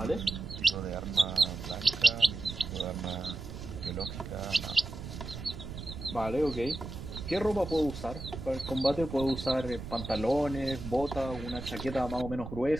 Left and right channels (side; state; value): right; noise; rumble, 9 dB below the sound